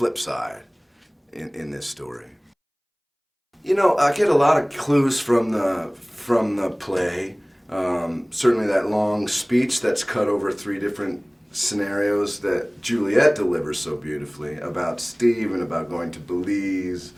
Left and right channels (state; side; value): identical; both; correlation 1.00